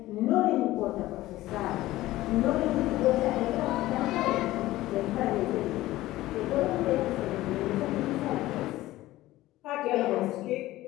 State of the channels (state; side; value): quieter; right; 16.6 dB